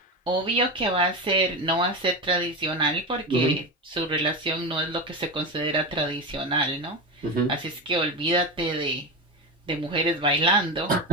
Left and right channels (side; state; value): both; normal; correlation 0.19